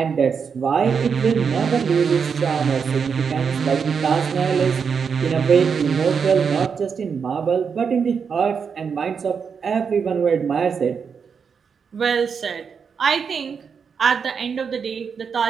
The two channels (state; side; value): quieter; left; 6.3 dB